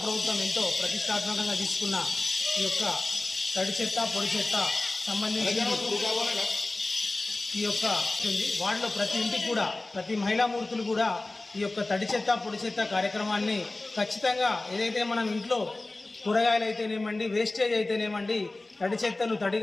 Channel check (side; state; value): right; quieter; 3.0 dB